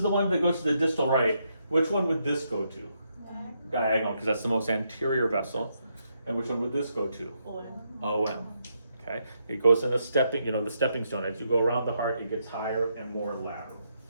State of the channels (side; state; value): both; inverted; correlation -0.79